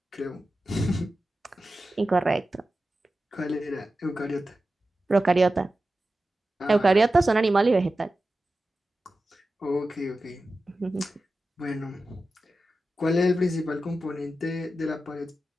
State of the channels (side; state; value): both; normal; correlation 0.93